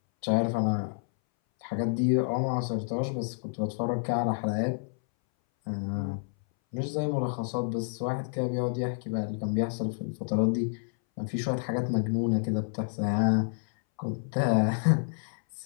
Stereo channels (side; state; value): right; silent; 58 dB below the other